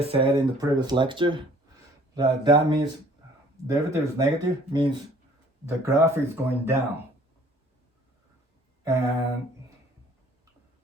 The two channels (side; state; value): both; normal; correlation 0.55